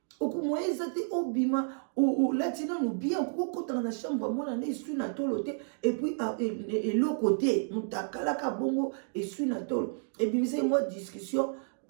okumweza te obima olati nanu bien okokotana na chambre mwana na esui na tolo te epuis eloko te mutakalaka bongo esui na tolo ebimisa mwa discussion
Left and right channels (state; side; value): silent; left; digital silence